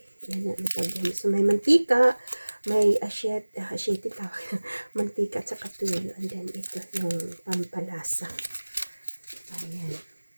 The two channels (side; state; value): both; inverted; correlation -1.00